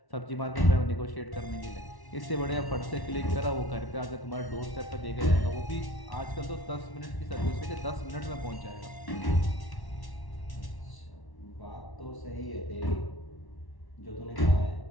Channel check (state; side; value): late; right; 1.1 ms